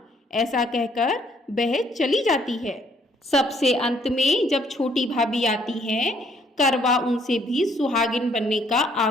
ऐसा कहकर वह चली जाती है। सबसे अंत में जब छोटी भाभी आती है, करवा उनसे भी सुहागिन बनने का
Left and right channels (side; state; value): both; normal; correlation 0.66